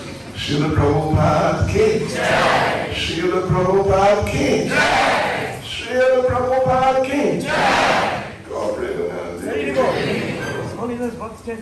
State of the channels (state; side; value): identical; both; correlation 1.00